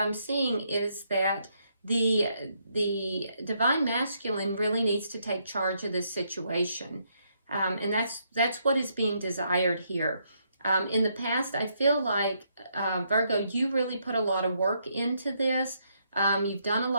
seeing is that the divine masculine really needs to take charge of this situation. And that's what is being desired here. In the past, I feel like, Virgo, you really put a lot of work into this. You've done a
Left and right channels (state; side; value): inverted; both; correlation -0.75